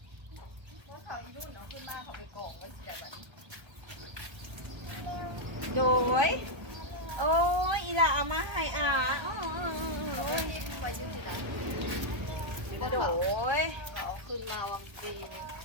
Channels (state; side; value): late; left; 1.3 ms